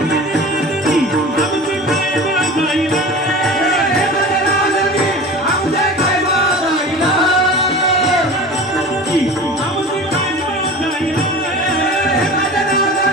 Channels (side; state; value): both; normal; correlation 0.36